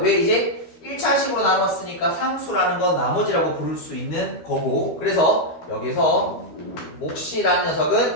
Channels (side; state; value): right; late; 13 ms